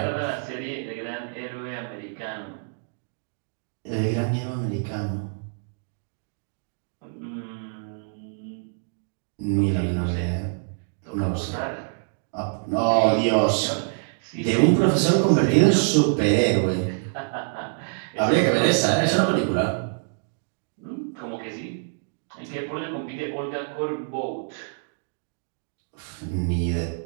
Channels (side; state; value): left; silent; digital silence